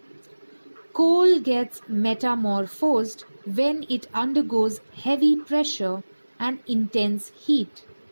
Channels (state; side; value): inverted; both; correlation -1.00